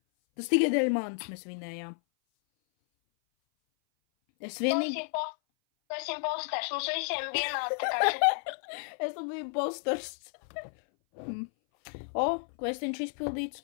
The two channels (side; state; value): right; silent; 57 dB below the other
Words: Tas tikai dēļ manis mēs vinējām. Es vienīgi... Tu esi imposters, mums visiem vienādi tā kā šitai. Es tam biju imposters. O, kvestiņš